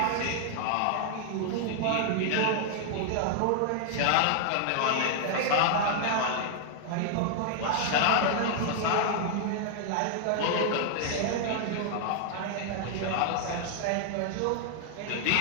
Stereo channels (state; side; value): different; both; correlation 0.00